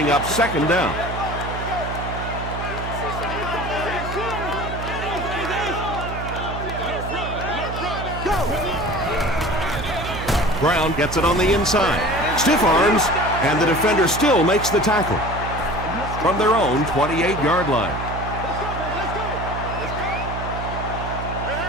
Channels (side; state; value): right; noise; hum, 7 dB below the sound